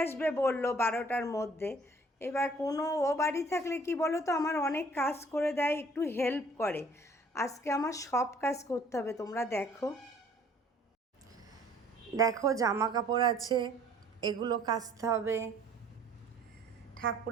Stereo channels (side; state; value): both; normal; correlation 0.56